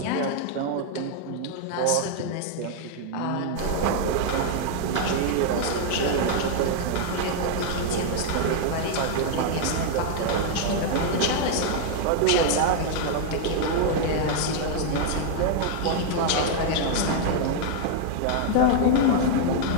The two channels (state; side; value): different; both; correlation 0.00